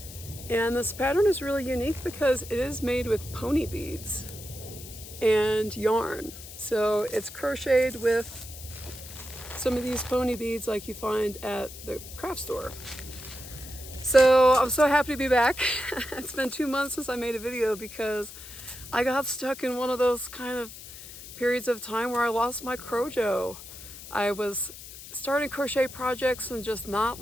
And this pattern is really unique because it is made with pony beads and yarn. So it's crocheted with some of these pony beads like you find at the craft store. So I'm so happy to be back. It's been 2 months since I made a video because I got stuck in one of those kind of periods of time where I lost my crojo. I was starting crochet projects and just not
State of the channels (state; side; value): noise; left; hiss, 14 dB below the sound